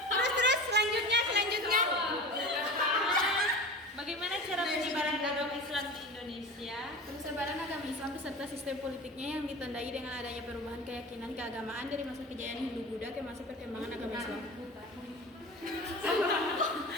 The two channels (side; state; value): both; normal; correlation 0.33